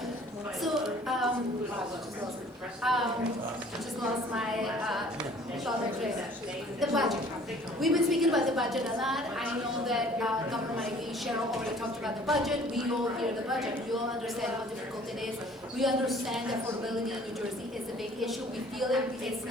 So, just lost my thought of the budget. We've been speaking about the budget a lot. I know that Governor Mike Cheryl already talked about the budget. We all hear the budget. We all understand how difficult it is. We understand that affordability in New Jersey is a big issue. We feel it. It's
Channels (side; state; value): both; normal; correlation 0.53